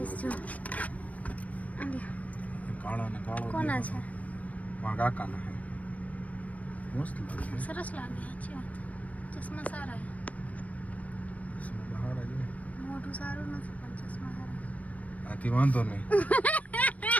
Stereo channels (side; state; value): right; late; 0.069 ms